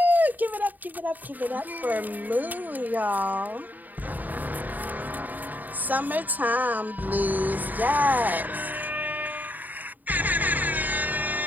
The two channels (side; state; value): left; late; 0.084 ms